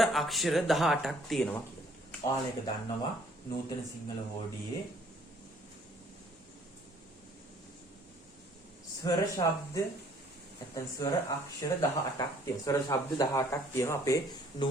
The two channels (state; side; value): normal; both; correlation 0.60